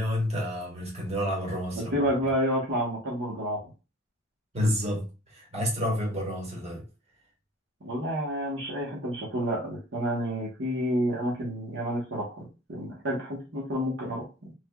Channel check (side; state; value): both; normal; correlation 0.43